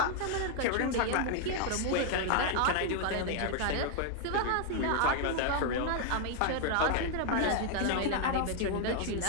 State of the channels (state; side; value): different; both; correlation 0.00